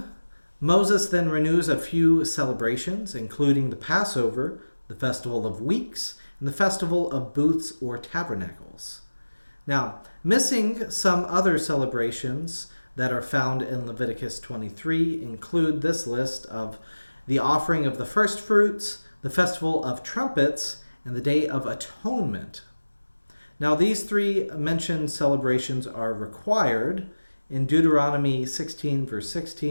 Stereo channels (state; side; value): inverted; both; correlation -1.00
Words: Moses then renews a few celebrations, including the Passover, the Festival of Weeks, and the Festival of Booths or Tabernacles. Now, missing some other celebrations that are found in Leviticus 23 include this list of the offering of the first fruits, the festival of trumpets, and the Day of Atonement. Now, these three mentioned celebrations are required in Deuteronomy 16, verse